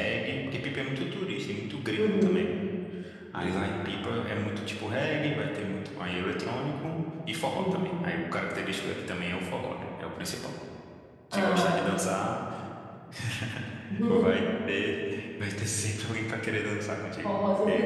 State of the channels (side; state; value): both; identical; correlation 1.00